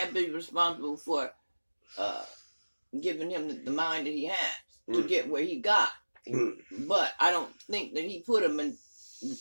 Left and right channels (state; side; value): inverted; both; correlation -1.00